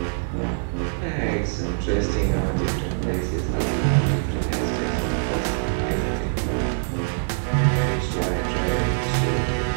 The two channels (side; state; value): left; silent; digital silence